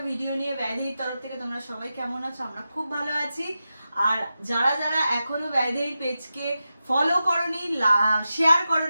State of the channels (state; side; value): inverted; both; correlation -0.91